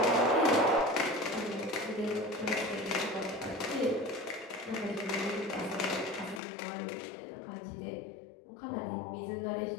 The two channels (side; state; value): right; drops out; at 6.4 s